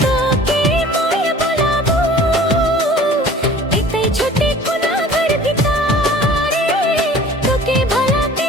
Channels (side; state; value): both; normal; correlation 0.46